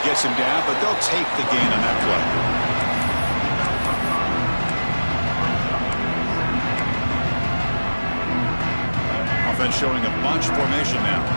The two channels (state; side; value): inverted; both; correlation -1.00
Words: gets him down, but they'll take the gain on that play. Offense showing a bunch formation now.